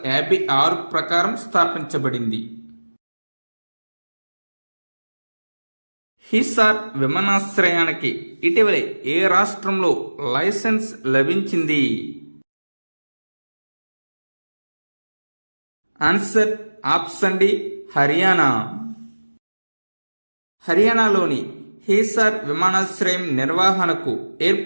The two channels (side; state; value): both; inverted; correlation -1.00